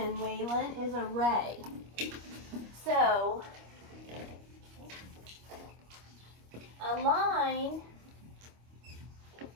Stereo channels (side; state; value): left; late; 25 ms